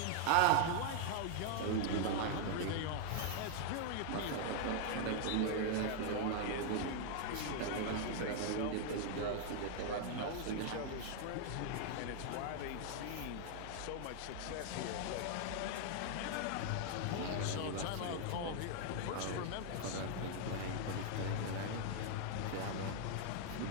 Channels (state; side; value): different; both; correlation 0.00